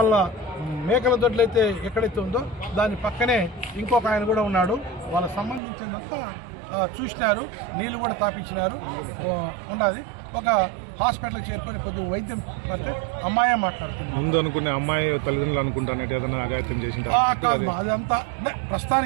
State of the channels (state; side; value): drops out; left; at 5.6 s